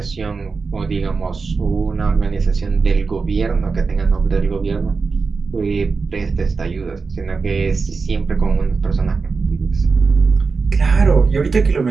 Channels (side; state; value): left; quieter; 4.6 dB